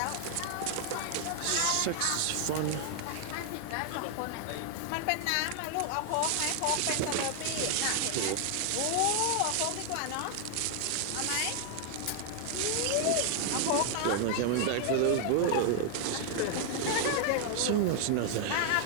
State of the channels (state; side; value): different; both; correlation 0.00